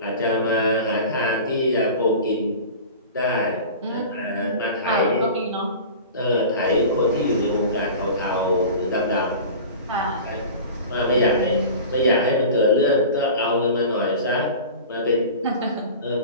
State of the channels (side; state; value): both; inverted; correlation -0.36